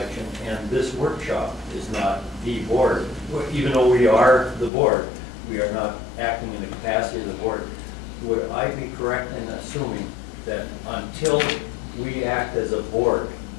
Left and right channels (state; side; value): drops out; right; at 4.7 s